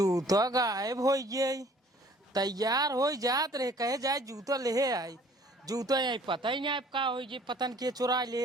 गायब हो गई तैयार हो जात रहे कहे जाए जूता ले आई जूता आई पता ही नहीं का हो गई पतन के चुरा ले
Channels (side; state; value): both; normal; correlation 0.55